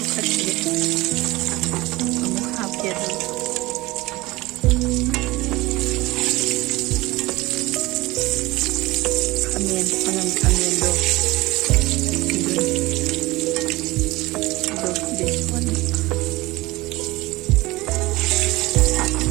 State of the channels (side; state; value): left; quieter; 20.6 dB